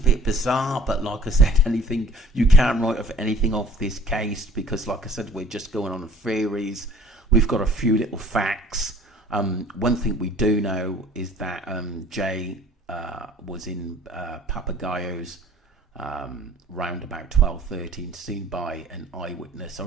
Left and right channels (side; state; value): both; normal; correlation 0.52